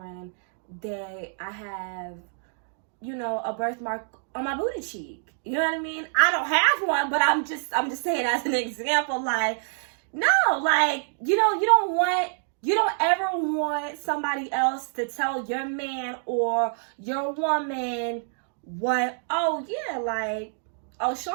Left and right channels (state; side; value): silent; left; digital silence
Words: that I have, a birthmark on my booty cheek. You know what I mean? I don't have one, but I'm just saying as an example. Like, no, like, you don't ever want somebody else to tell your man or your woman what, oh yeah, like, oh,